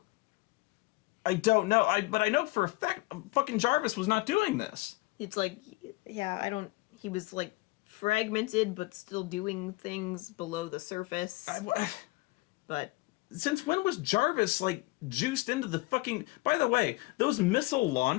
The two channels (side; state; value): right; quieter; 22.2 dB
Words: I don't know. But I know for a fact fucking Jarvis was not doing this. It's like, he was, like, fragmented, but still doing things below the surface. But... Since when was Jarvis, like, juiced into the fucking... By the way, those missile